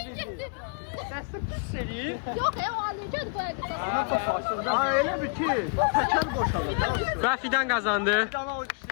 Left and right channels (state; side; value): quieter; right; 36.8 dB